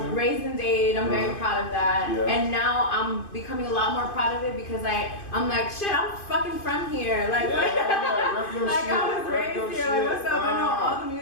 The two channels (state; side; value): late; right; 2.5 ms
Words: raised in Dade. I'm very proud of that. Yeah. And now I'm becoming a lot more proud of it because I'm like, shit, I'm fucking from here. Like, like I was raised here. Like, what's up? I know all the